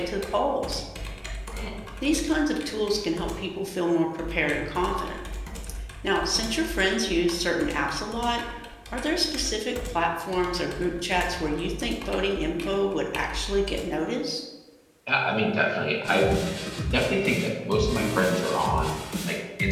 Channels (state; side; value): identical; both; correlation 1.00